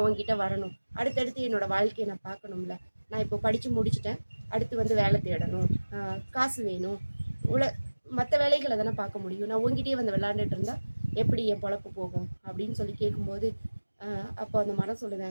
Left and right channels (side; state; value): both; inverted; correlation -1.00